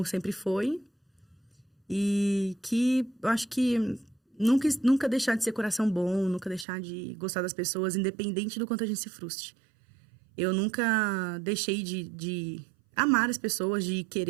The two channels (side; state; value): left; drops out; at 6.7 s